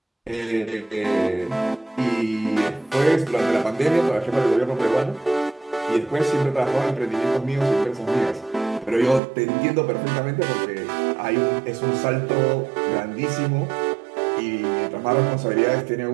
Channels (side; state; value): left; drops out; at 9.2 s